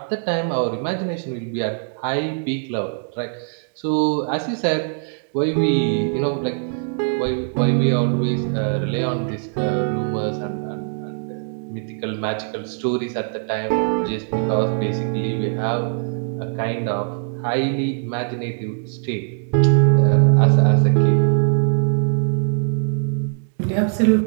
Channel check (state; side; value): silent; left; digital silence